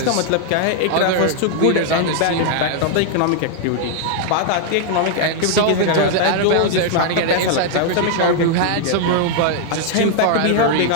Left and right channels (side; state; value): both; different; correlation 0.00